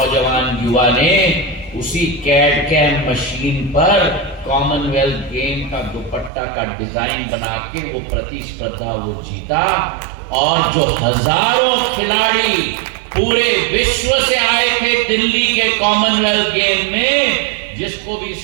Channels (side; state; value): left; drops out; at 6.3 s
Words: युवा ने उसी कैड कैम मशीन पर कॉमनवेल्थ गेम का दुपट्टा का डिजाइन बना के वो प्रतिस्पर्धा वो जीता। और जो हजारों खिलाड़ी पूरे विश्व से आए थे दिल्ली के कॉमनवेल्थ गेम में। जिसको भी